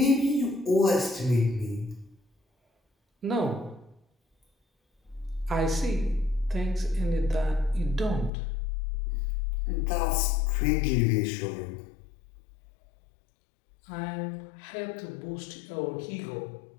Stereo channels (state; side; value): drops out; right; at 8.3 s